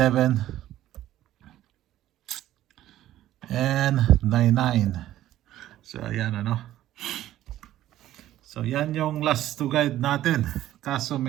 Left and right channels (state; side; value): quieter; left; 13.5 dB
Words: and 9-9. So ayan ano. So yan yung last to guide natin. Kaso